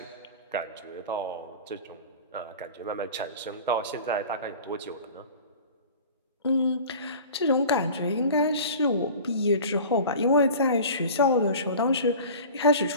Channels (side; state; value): both; inverted; correlation -0.39